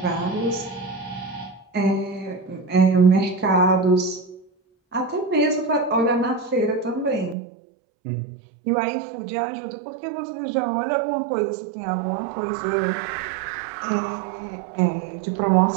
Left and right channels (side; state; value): left; drops out; at 7.4 s